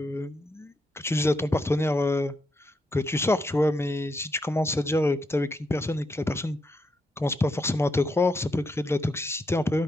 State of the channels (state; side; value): normal; both; correlation 0.81